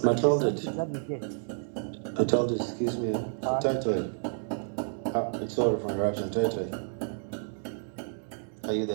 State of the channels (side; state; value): left; silent; digital silence